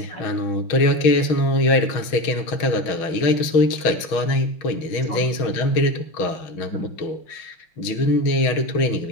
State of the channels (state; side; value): late; right; 6.3 ms